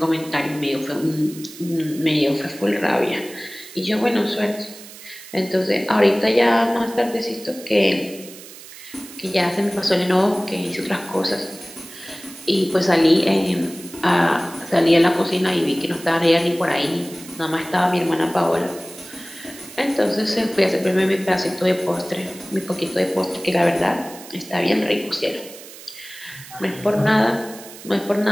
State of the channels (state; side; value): noise; right; hiss, 16 dB below the sound